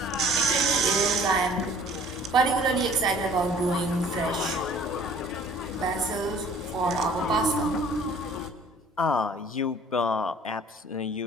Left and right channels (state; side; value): normal; both; correlation 0.52